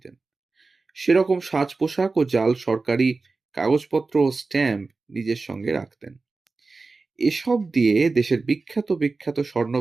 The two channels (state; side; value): quieter; left; 3.9 dB